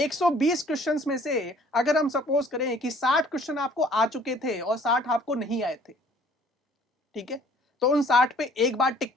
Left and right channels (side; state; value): both; normal; correlation 0.56